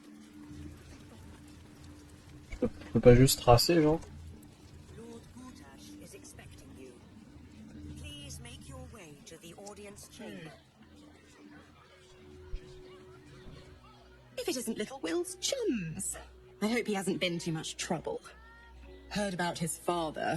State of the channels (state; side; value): identical; both; correlation 1.00